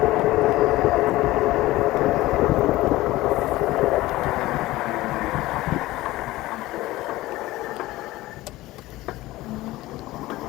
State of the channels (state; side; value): quieter; right; 17.7 dB